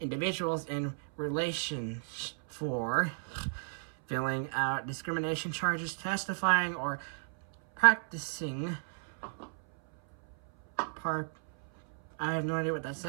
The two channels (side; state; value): left; silent; 56 dB below the other